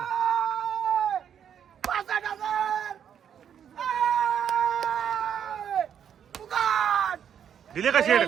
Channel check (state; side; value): quieter; left; 8.7 dB